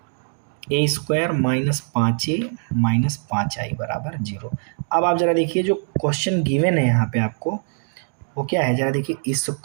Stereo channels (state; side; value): silent; left; 60 dB below the other